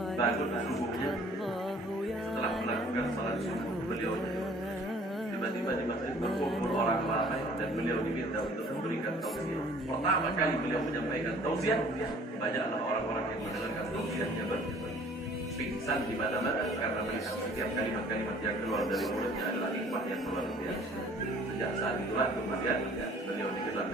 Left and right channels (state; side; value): normal; both; correlation 0.54